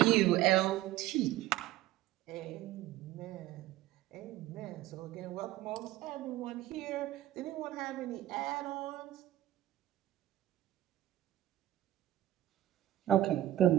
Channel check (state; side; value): quieter; left; 14.5 dB